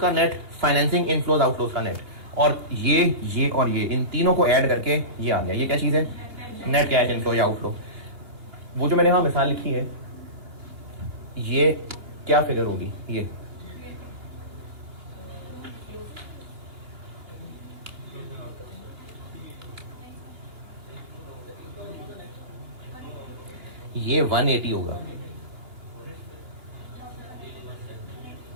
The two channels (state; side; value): late; left; 2.8 ms